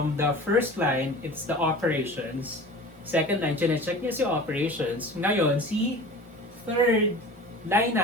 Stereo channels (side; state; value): both; normal; correlation 0.38